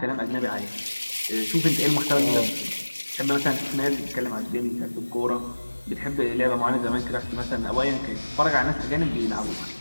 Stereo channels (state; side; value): inverted; both; correlation -1.00